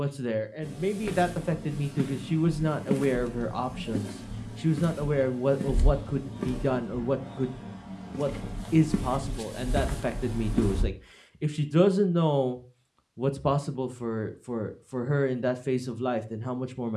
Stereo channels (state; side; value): identical; both; correlation 1.00